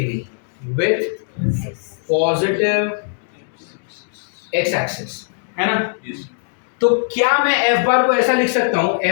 with positive x axis, है ना? Yes. तो क्या मैं f बार को ऐसा लिख सकता हूं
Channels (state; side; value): silent; right; 66 dB below the other